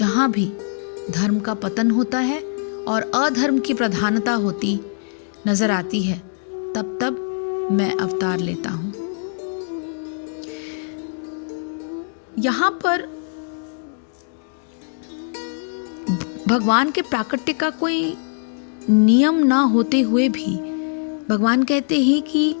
भी धर्म का पतन होता है और अधर्म की प्रधानता होती नजर आती है, तब तब मैं अवतार लेता हूँ। यहाँ पर भगवान के प्राकट्य का कोई नियम ना होते हुए भी भगवान कहते हैं कि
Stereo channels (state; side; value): silent; right; digital silence